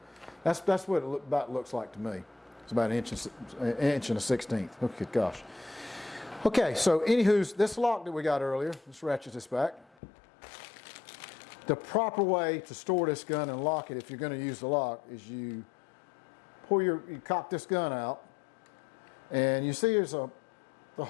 that's what it about looks like to me. It's about 1 1 1/16. Okay, gosh. Okay, so anywho's this lock that we got earlier, let's ratchet this back. The proper way to store this gun and lock it, if you're going to use the lock, is you cock this gun out, and you see there's the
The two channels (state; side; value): drops out; right; at 10.0 s